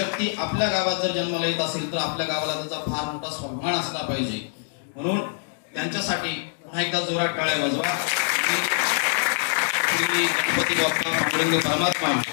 आपल्या गावात जर जन्माला येत असेल तर आपल्या गावाला त्याचा फार मोठा स्वाभिमान असला पाहिजे. म्हणून त्यांच्यासाठी पुन्हा एकदा जोरात टाळ्या वाजवा. गणपती बाप्पा पांडुरंग परमात्मा,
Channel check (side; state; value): right; silent; 62 dB below the other